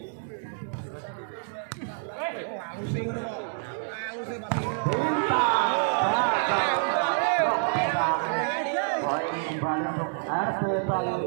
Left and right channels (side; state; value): left; silent; digital silence